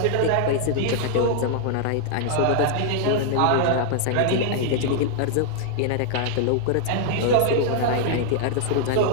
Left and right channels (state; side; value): different; both; correlation -0.01